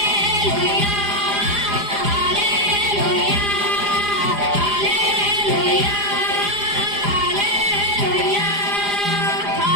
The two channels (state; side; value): late; left; 4.9 ms